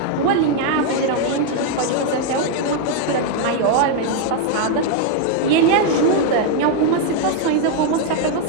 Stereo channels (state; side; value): different; both; correlation 0.00